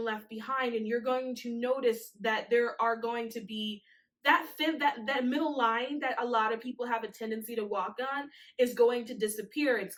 left behind. And you're going to notice that there are going to be that middle line that a lot of people have a tendency to walk on is going to disappear. It's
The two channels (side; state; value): both; identical; correlation 1.00